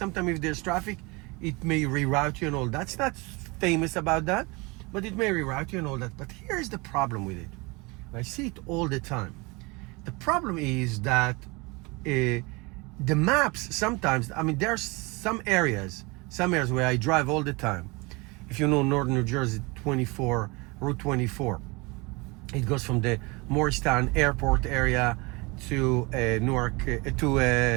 if there's traffic, it may reroute you and all that. It's not famous about that, but it may reroute you and all that. But here's the problem with it. I see it all the time. The problem is that the maps sometimes, I mean, there's some areas where I drive all the time. If you know northern New Jersey, Route 24, it goes from the Morristown Airport area to Newark,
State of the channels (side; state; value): left; quieter; 26.4 dB